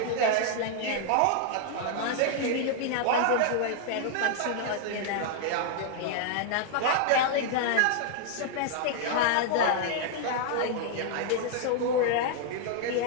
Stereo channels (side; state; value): both; different; correlation 0.00